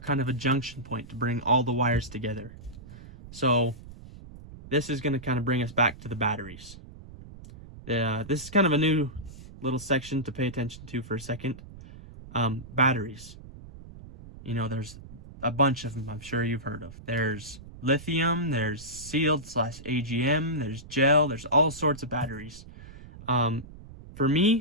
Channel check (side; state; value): right; noise; rumble, 16 dB below the sound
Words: of a junction point to bring all the wires together. So this is going to kind of bring us back to the batteries. This is kind of a new little section to pay attention to for a second. Batteries. You know, there's a bunch of them I'm sure you've heard of. There's lithium, there's sealed / AGM, there's gel, there's all sorts of batteries. For